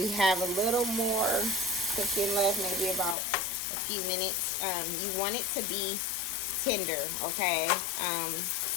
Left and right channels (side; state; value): right; drops out; at 3.2 s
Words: have a little more cooking left, maybe about a few minutes. You want it to be tender, okay?